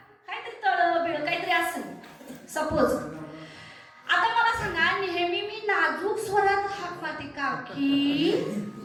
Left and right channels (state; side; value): identical; both; correlation 1.00